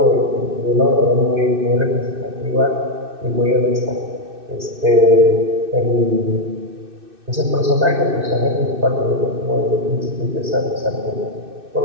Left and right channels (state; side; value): late; left; 2.6 ms